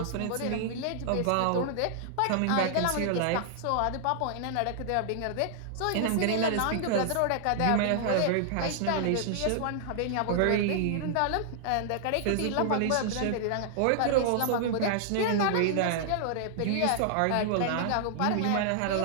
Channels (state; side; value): different; both; correlation -0.01